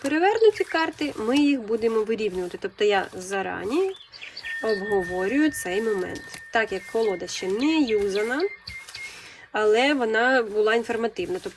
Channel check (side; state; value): both; identical; correlation 1.00